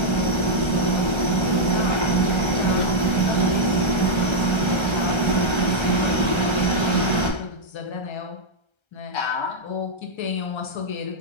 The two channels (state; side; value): late; right; 1.3 ms